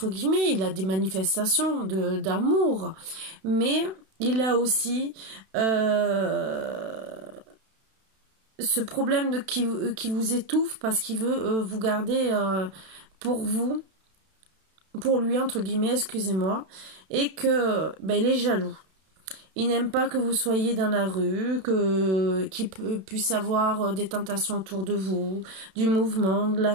guillemets, il a des manifestations d'amour, mais il a aussi ce problème qui vous étouffe parce qu'il veut vous garder pour lui, entre guillemets, excusez-moi, et que il est jaloux. Il n'aime pas que vous soyez dans la rue, qu'il puisse avoir des tentations autour de vous, du mouvement, de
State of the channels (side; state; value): left; late; 32 ms